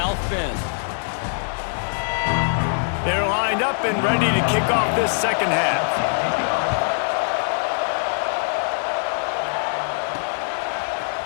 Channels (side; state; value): right; silent; 64 dB below the other